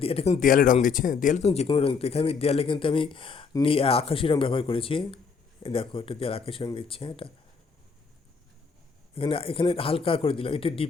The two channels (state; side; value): quieter; right; 5.3 dB